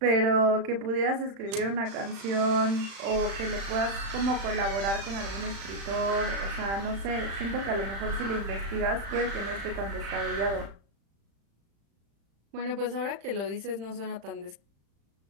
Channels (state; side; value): late; left; 35 ms